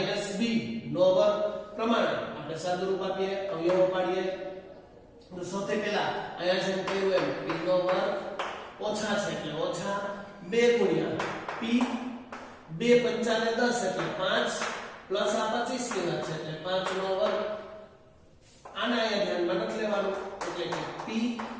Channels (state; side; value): identical; both; correlation 1.00